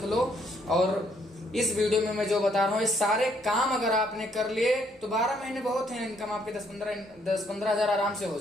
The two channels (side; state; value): both; normal; correlation 0.69